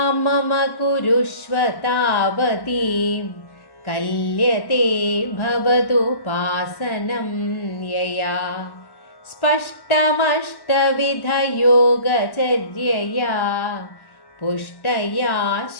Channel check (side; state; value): right; late; 1.1 ms